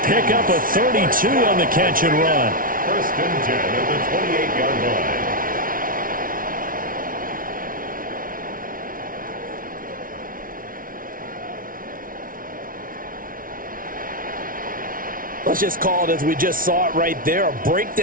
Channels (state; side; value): late; left; 0.40 ms